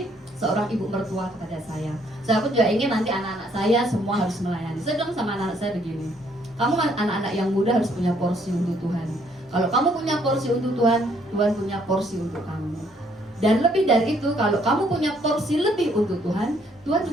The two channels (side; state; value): both; normal; correlation 0.67